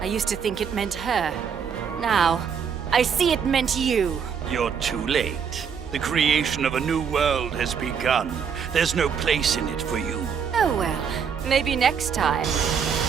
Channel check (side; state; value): left; quieter; 7.0 dB